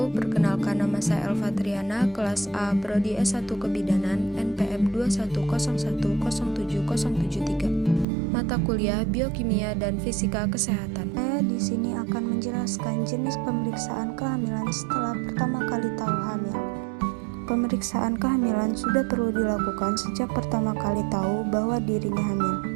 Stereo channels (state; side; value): drops out; left; at 8.1 s